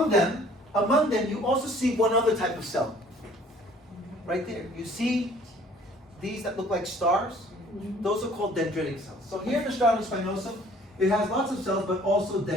them you also see one other type of cell. Right there. You see these that look like stars? Those are called dendritic cells. So here in the stratum spinosum, it has lots of cells, but also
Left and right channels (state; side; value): normal; both; correlation 0.55